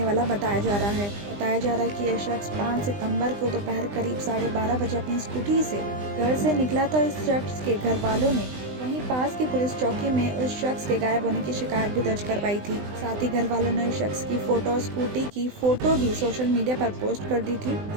वाला बताया जा रहा है। बताया जा रहा है कि यह शख्स 5 सितंबर को दोपहर करीब 12:30 बजे अपनी स्कूटी से घर से निकला था। इस शख्स के घर वालों ने वहीं पास की पुलिस चौकी में उस शख्स के गायब होने की शिकायत भी दर्ज करवाई थी। साथ ही घर वालों ने उस शख्स की फोटो और स्कूटी की फोटो भी सोशल मीडिया पर पोस्ट कर दी थी।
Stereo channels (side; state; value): left; late; 20 ms